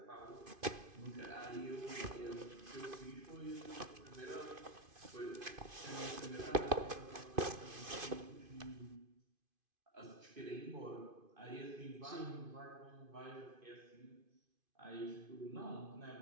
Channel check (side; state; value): left; late; 2.5 ms